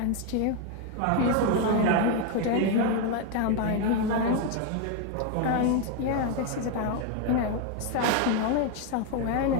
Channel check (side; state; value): both; different; correlation 0.01